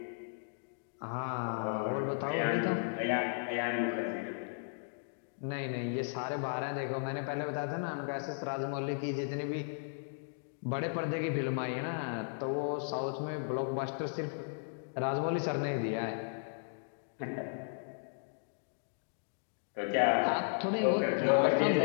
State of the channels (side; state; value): right; silent; digital silence